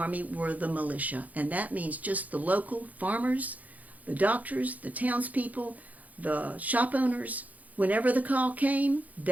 were the militia, and that means just the local farmers, the doctors, the townspeople, the shop owners. Whenever the call came,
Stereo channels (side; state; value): left; late; 0.077 ms